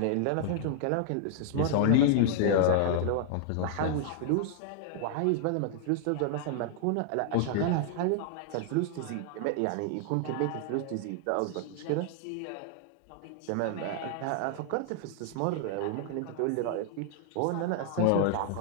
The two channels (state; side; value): different; both; correlation -0.01